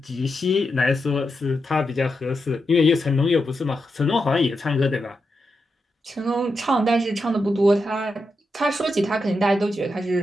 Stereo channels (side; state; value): both; normal; correlation 0.86